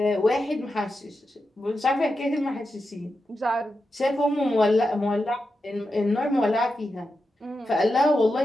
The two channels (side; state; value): both; normal; correlation 0.89